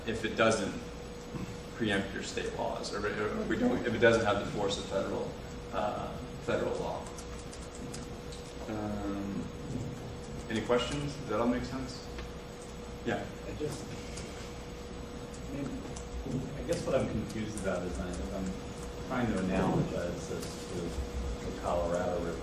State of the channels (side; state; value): both; identical; correlation 1.00